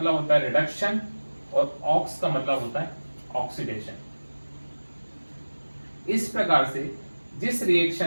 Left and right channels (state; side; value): inverted; both; correlation -1.00